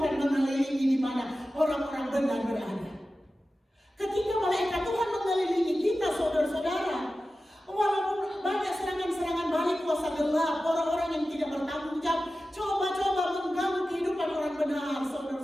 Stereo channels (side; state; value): both; normal; correlation 0.94